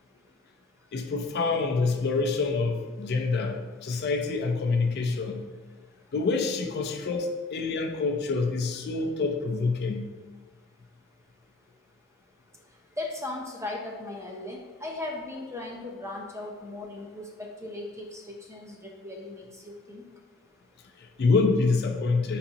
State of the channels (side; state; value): right; quieter; 3.5 dB